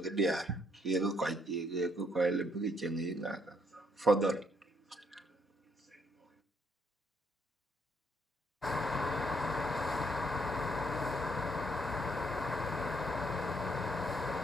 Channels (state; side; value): normal; both; correlation 0.71